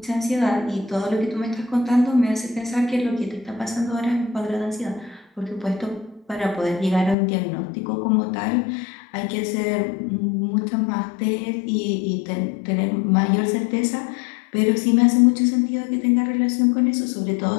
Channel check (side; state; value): right; drops out; at 7.2 s